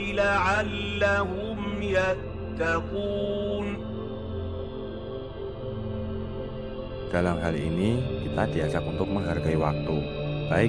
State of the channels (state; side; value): identical; both; correlation 1.00